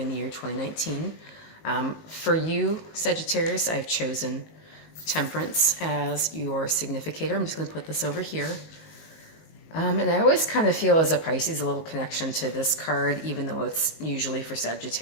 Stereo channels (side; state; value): right; late; 19 ms